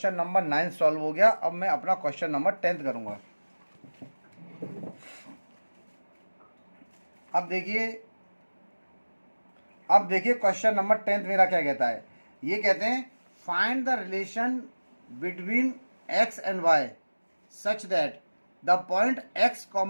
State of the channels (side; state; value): both; inverted; correlation -1.00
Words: नंबर 9 सॉल्व हो गया। अब मैं अपना क्वेश्चन नंबर 10 करूँगा। अब देखिए क्वेश्चन नंबर 10 मेरा क्या कहता है, ये कहते हैं find the relation between x and y such that the point x,